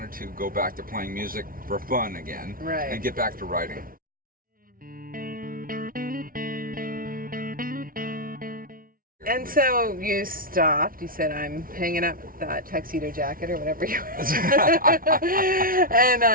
to go back to playing music for fun again and get back to writing. And so you stopped. You said, I'm hanging up that tuxedo jacket or whatever you were.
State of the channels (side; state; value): left; late; 0.42 ms